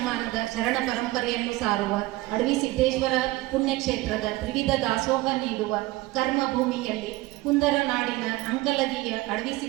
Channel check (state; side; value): quieter; left; 19.1 dB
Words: ಶರಣ ಪರಂಪರೆಯನ್ನು ಸಾರುವ ಅಡವಿಸಿದ್ದೇಶ್ವರ ಪುಣ್ಯಕ್ಷೇತ್ರದ ತ್ರಿವಿಧ ದಾಸೋಹ ನೀಡುವ ಕರ್ಮಭೂಮಿಯಲ್ಲಿ ಕುಂದರ ನಾಡಿನ ಅಂಕಲಗಿಯ